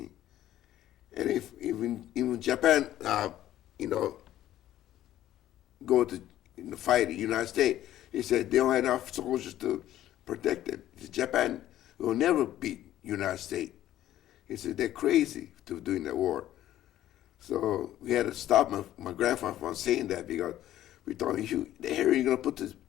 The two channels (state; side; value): quieter; right; 13.1 dB